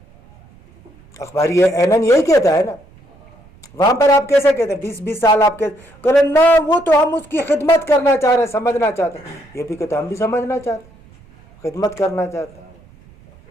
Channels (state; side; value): noise; right; rumble, 26 dB below the sound